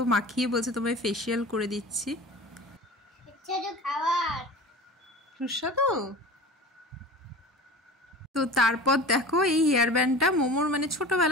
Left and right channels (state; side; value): normal; both; correlation 0.36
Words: মাখিয়ে বলছে তোমায় ফেশিয়াল করে দিচ্ছি। সুস্বাদু। তো তারপর দেখো এই হেয়ার ব্যান্ডটা মোমোর মানে